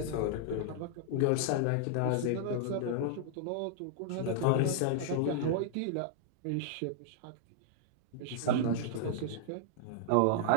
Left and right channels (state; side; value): different; both; correlation -0.01